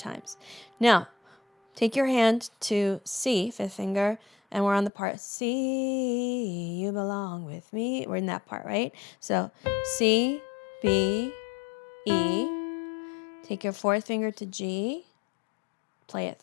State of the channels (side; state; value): right; drops out; at 4.9 s